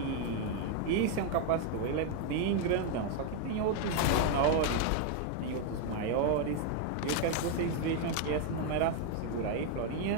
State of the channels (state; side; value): different; both; correlation 0.01